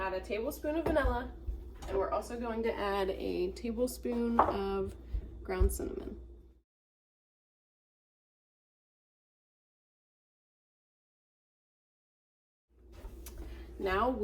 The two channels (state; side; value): identical; both; correlation 1.00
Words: a tablespoon of vanilla, and we're also going to add a tablespoon of ground cinnamon. Now